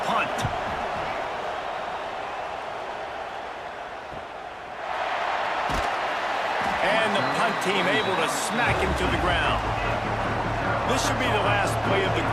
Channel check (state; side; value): identical; both; correlation 1.00